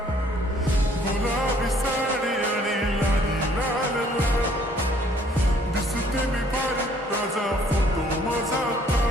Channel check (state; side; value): normal; both; correlation 0.61